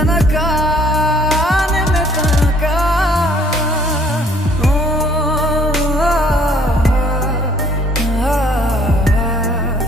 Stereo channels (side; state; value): both; normal; correlation 0.60